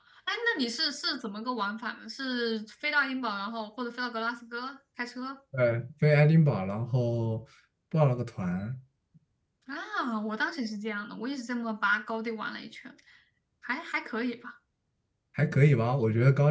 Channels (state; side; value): identical; both; correlation 1.00